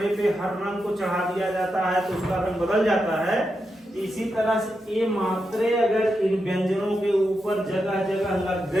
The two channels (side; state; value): both; normal; correlation 0.87